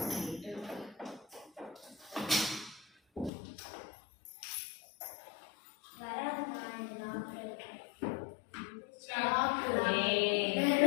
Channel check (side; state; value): right; drops out; at 3.3 s